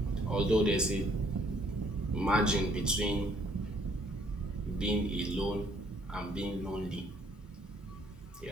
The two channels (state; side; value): normal; both; correlation 0.64